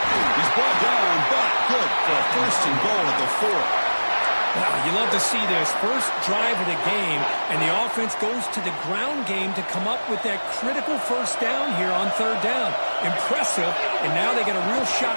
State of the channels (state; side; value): inverted; both; correlation -1.00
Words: brought down, but good for a first and goal at the 4. Wow, you love to see this. First drive of the game, and the offense goes to the ground game to come up with that critical first down here on third down. Impressive, and now they get a real shot